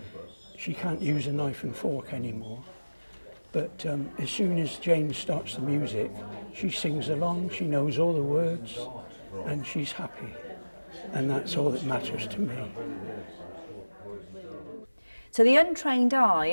she can't use a knife and fork anymore. But as soon as Jane starts the music, she sings along, she knows all the words and she's happy, and that's all that matters to me. To the untrained eye,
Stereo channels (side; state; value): both; inverted; correlation -1.00